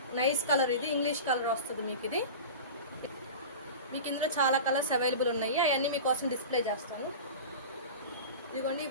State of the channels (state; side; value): inverted; both; correlation -0.31